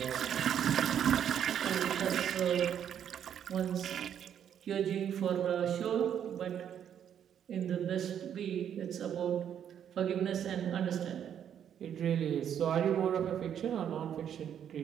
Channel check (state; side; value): quieter; left; 9.1 dB